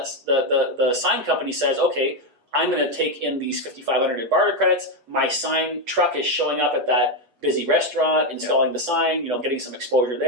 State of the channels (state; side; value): late; left; 8.3 ms